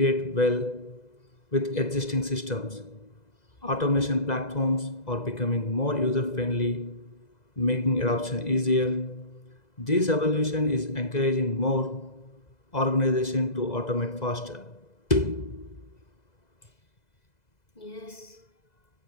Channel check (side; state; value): right; late; 2.0 ms